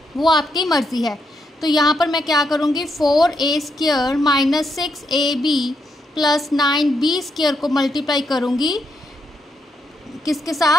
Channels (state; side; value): normal; both; correlation 0.80